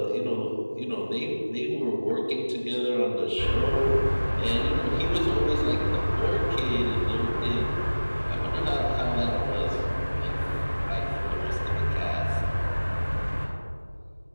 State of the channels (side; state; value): both; inverted; correlation -1.00